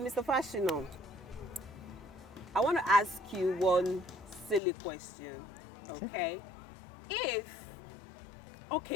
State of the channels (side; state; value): right; drops out; at 4.6 s